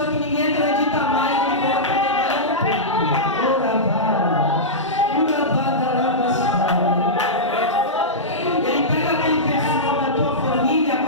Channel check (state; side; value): normal; both; correlation -0.13